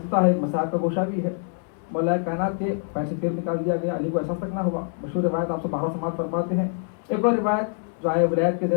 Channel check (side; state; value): right; silent; 57 dB below the other